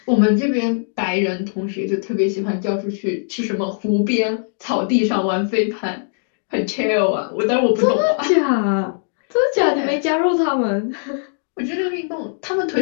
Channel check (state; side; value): silent; right; digital silence